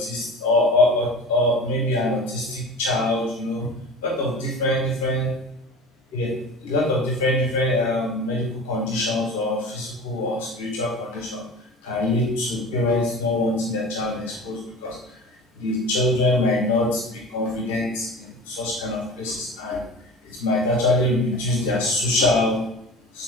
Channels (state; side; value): normal; both; correlation 0.36